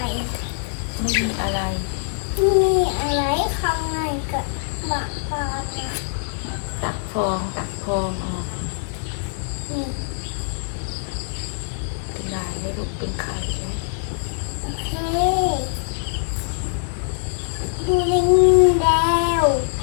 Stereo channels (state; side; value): silent; right; digital silence